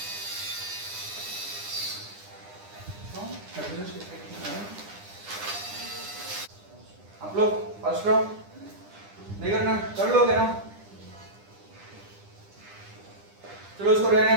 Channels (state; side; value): late; left; 9.9 ms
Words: आप लोग फर्स्ट राउंड नहीं करना, कर लोगे ना। चलो उसको रहने